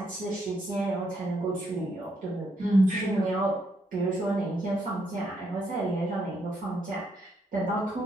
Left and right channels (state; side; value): normal; both; correlation 0.76